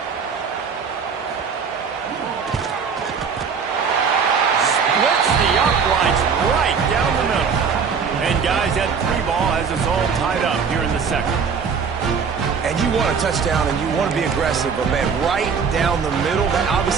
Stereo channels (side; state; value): left; quieter; 6.1 dB